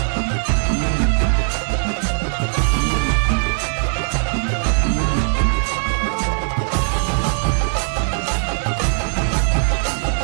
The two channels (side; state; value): left; silent; 66 dB below the other